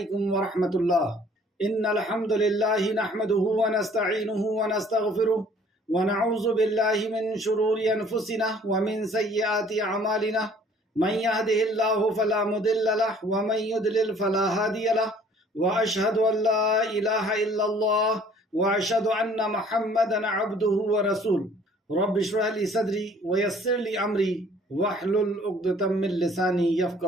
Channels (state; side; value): normal; both; correlation 0.55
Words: ورحمۃ اللہ۔ ان الحمد للہ نحمده ونستعینه ونستغفره ونعوذ باللہ من شرور انفسنا ومن سیئات اعمالنا من يهده الله فلا مضل له ومن يضلل فلا هادي له واشهد ان لا اله الا الله واشهد ان محمدا عبده ورسوله رب اشرح لي صدري ويسر لي امري واحلل عقدة من لساني